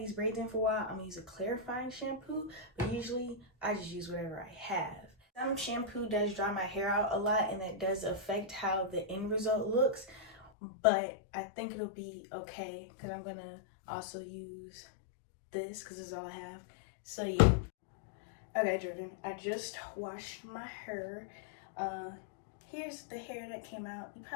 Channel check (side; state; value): right; drops out; at 10.5 s